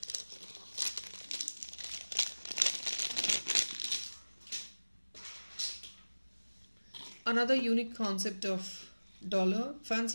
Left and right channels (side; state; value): both; inverted; correlation -1.00